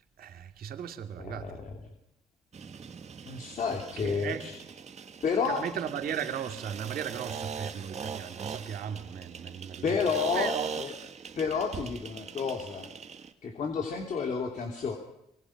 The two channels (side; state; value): both; normal; correlation 0.45